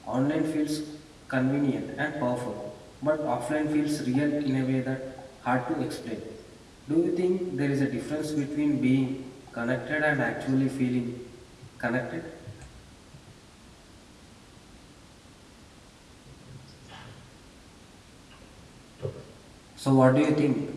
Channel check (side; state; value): both; identical; correlation 1.00